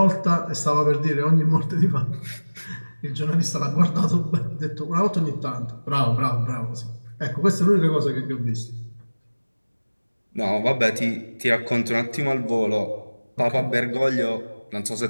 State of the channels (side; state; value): both; inverted; correlation -1.00